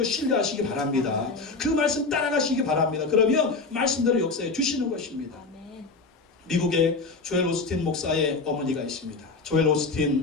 신뢰하시기 바랍니다. 그 말씀 따라가시기 바랍니다. 그러면 말씀대로 역사해 주시는 것입니다. 미국에 조엘 오스틴 목사의 어머니가 있습니다. 조엘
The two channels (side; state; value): right; quieter; 3.9 dB